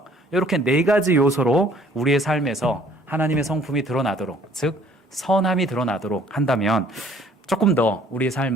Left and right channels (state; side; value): normal; both; correlation 0.58